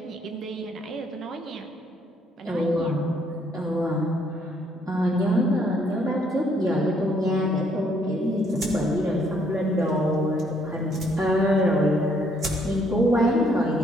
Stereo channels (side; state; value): both; normal; correlation 0.68